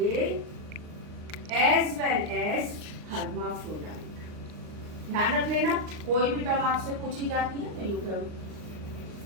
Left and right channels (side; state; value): left; late; 39 ms